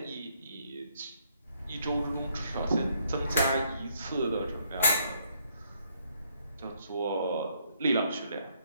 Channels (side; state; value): both; inverted; correlation -0.70